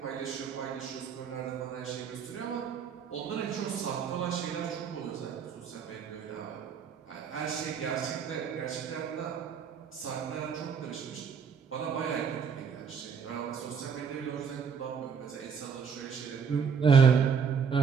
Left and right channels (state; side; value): quieter; left; 6.5 dB